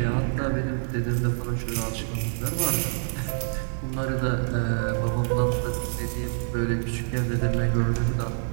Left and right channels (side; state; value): left; silent; 56 dB below the other